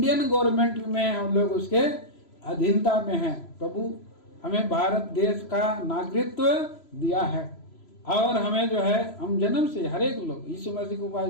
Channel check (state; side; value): late; right; 3.0 ms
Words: गवर्नमेंट में, हम लोग उसके अधीनता में हैं। प्रभु हमें भारत देश का नागरिकत्व दिया है, और हमें जो है, हम जन्म से हर एक लोग यीशु मसीह को